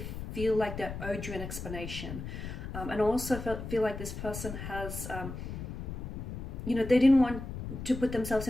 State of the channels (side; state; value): left; noise; rumble, 7 dB below the sound